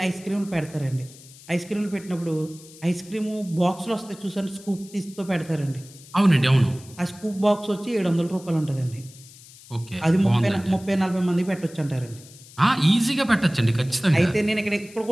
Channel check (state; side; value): noise; left; hiss, 21 dB below the sound